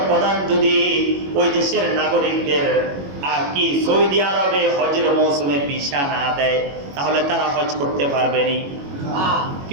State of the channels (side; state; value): left; late; 21 ms